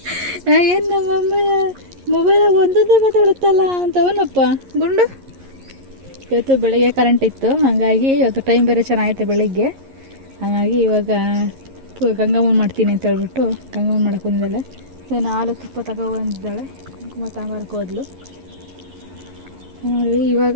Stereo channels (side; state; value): left; late; 11 ms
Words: ಏನು ನಮ್ಮಮ್ಮ ಮೊಬೈಲಾಗ ಒಂದೊಂದೇ ಮಾತಾಡುತ್ತಲ್ಲ ಅಂತವನಪ್ಪ ಗುಂಡು. ಇವತ್ತು ಬೆಳಗ್ಗೆ ಕರೆಂಟ್ ಇತ್ತು, ಹಾಗಾಗಿ ಇವತ್ತು ಟೈಮ್ ಬೇರೆ ಚೆನ್ನಾಗೈತೆ ಬೆಳಗ್ಗೆ. ಹಾಗಾಗಿ ಇವಾಗ ಗಂಗಮ್ಮನ ಮಾಡ್ತೀನಿ ಅಂತ ಹೇಳ್ಬಿಟ್ಟು ಗಂಗಮ್ಮನ ಮಾಡೋಕೆ ಬಂದಿದ್ದಾಳೆ. ನಾನು ಹಾಲು ತುಪ್ಪ ತಗೊಬಂದಿದ್ದಾಳೆ, ಕುಂಕುಮ ತಾಂಬಾರಕ್ಕೆ ಹೋದ್ಲು ನೋಡಿ. ಇವಾಗ